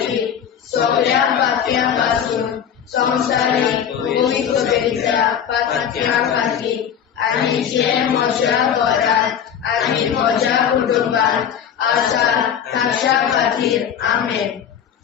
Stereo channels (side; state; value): right; quieter; 8.5 dB